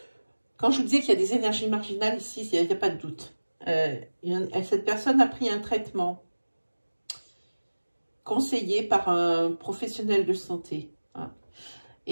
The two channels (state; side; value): inverted; both; correlation -1.00